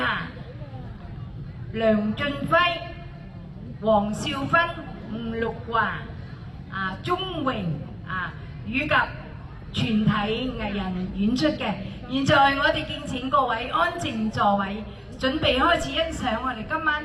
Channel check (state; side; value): identical; both; correlation 1.00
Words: 梁俊輝、黃少芬、吳玉華、鐘榮以及全體藝人演出嘅。現在我哋敬請各位安靜座位，準備開始欣賞我哋今